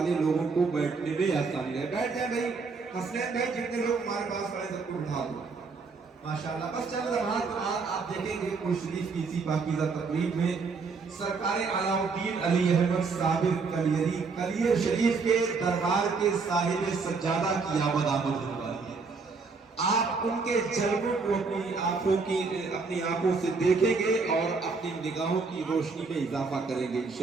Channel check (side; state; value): left; quieter; 4.6 dB